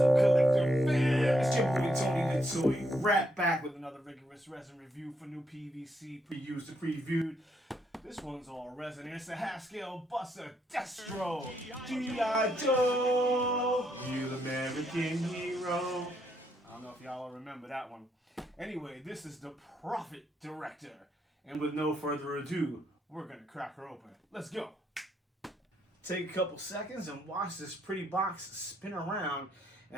collector fam? It's your boy Tony the Toy, right back with another rigorous resin review for new PVC pre-used and previewed. This one's all resin. It's a half-scale buster Destro, G.I. Joe, real American hero. I don't know if y'all remember that one. Anyway, this is the Prophet Director. And with no further ado, we're gonna crack her open. Let's go. Take a couple seconds and watch this pretty box spin around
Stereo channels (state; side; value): normal; both; correlation 0.76